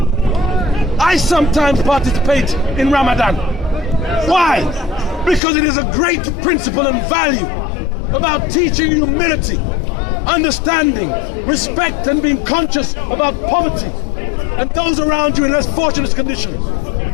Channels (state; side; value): drops out; right; at 5.4 s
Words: I sometimes participate in Ramadan. Why? Because it is a great principle and value about teaching humility, understanding, respect, and being conscious about poverty and those around you in less fortunate conditions,